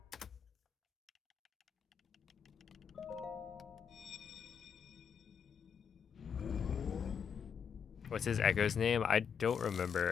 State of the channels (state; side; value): quieter; right; 7.0 dB